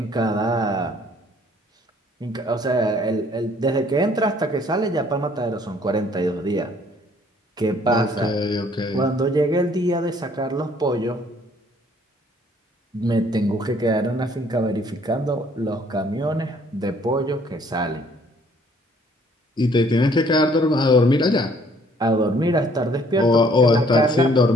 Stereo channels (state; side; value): normal; both; correlation 0.61